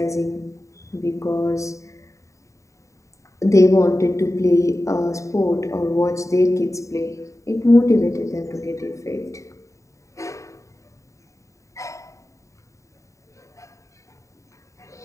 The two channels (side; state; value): right; late; 0.15 ms